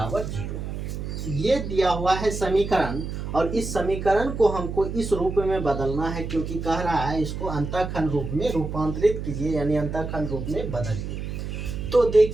0। ये दिया हुआ है समीकरण, और इस समीकरण को हमको इस रूप में बदलना है, क्योंकि कह रहा है इसको अंतःखंड रूप में रूपांतरित कीजिए, यानी अंतःखंड रूप में बदलिए। तो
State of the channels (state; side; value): noise; right; hum, 6 dB below the sound